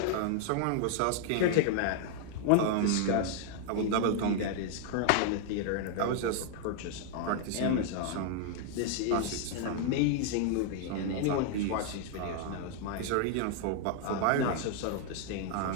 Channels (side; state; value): both; different; correlation 0.00